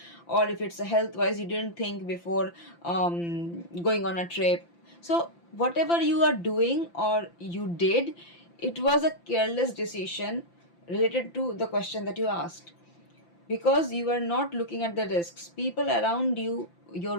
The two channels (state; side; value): late; right; 5.9 ms